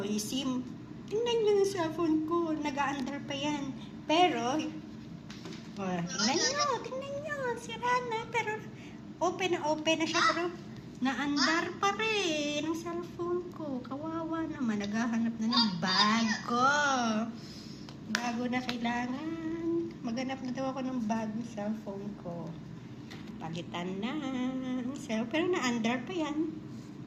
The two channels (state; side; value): identical; both; correlation 1.00